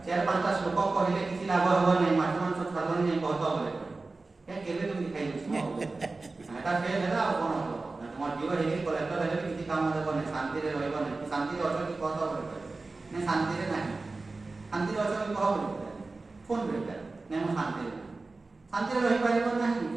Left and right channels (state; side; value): quieter; left; 3.6 dB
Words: 4-5ଟା ଶ୍ଲୋକ କହିଲେ କିଛି ଲାଭ ହେବ ନାହିଁ ମାଛ ମାଂସ ଛାଡ଼ିବନି ନାହିଁ କହତ ବୋଲେ କେବେ ତୁମେ ଖାଇଦେଉଛି ଏଇଟା ସେ ହେଲା ଆଉ କ'ଣ ହେବ ତୁମ ଝିଅ ହେଇକି କଲେକ୍ଟର ହେଲେ ବି କିଛି କାମ ଦେବନି ଶାନ୍ତିରେ ରହିବନି ଶାନ୍ତିରେ ଅଛ କି କହତ ବୋଲି କହିଲେ ନାଇଁ ଶାନ୍ତିରେ ନାହିଁ ଶାନ୍ତିରେ ଅଛ କି କହ ବୋଲି ଫୋନ୍ କରିବେ ନାଇଁ ମୁଁ ଶାନ୍ତିରେ ନାହିଁ ଶାନ୍ତିରେ ରହିପାରିବ ନାହିଁ